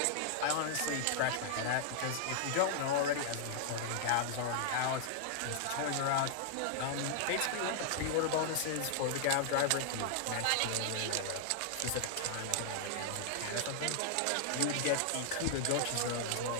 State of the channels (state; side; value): different; both; correlation -0.01